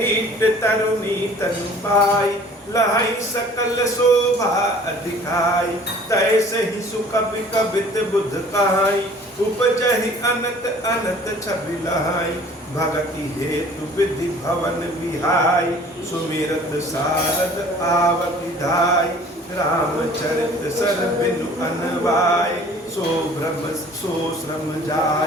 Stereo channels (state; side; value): normal; both; correlation 0.50